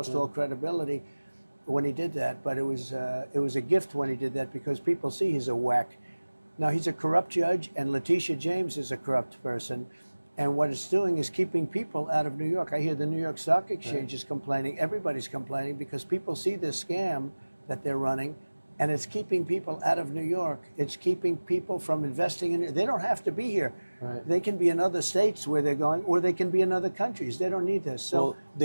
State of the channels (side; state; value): both; inverted; correlation -1.00